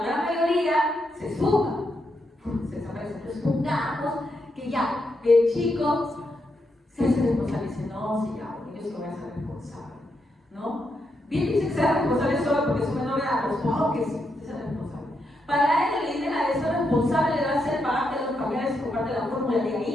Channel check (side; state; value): both; normal; correlation 0.82